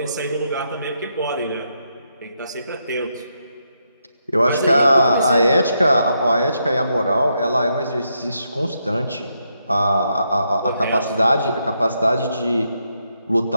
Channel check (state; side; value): inverted; both; correlation -0.80